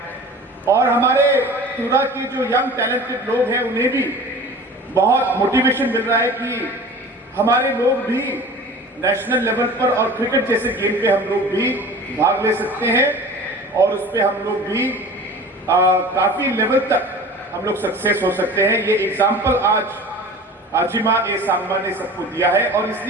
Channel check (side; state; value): both; normal; correlation 0.40